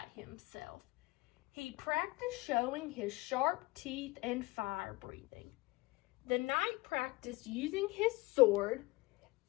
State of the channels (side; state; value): right; quieter; 21.8 dB